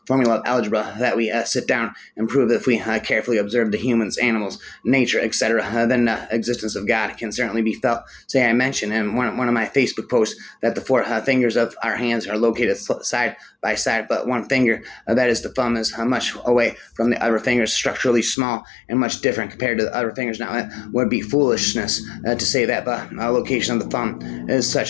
that we sit down and prove if we carefully observe the humans, animals, nature, etc. Then the existence of God can certainly be felt. Say I mentioned in one of my Facebook posts that the four fingers of our hands are located side by side, but one finger, that is the thumb, is much away from the other fingers, structurally small and much different compared to the other fingers. Now, it would be foolishness to say that the location of the thumb is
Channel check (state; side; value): drops out; right; at 18.4 s